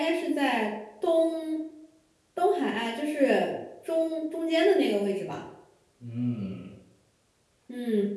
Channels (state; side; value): identical; both; correlation 1.00